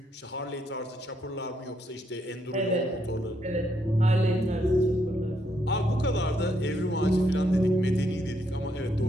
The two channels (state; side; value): normal; both; correlation 0.75